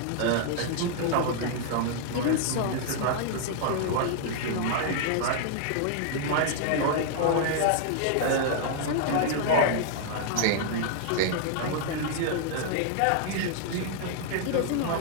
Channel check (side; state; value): both; different; correlation 0.00